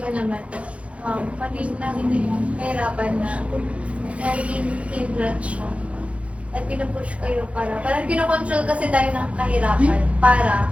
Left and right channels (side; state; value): left; late; 0.063 ms